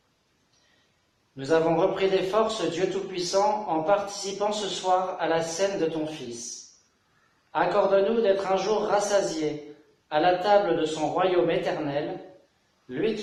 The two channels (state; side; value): identical; both; correlation 1.00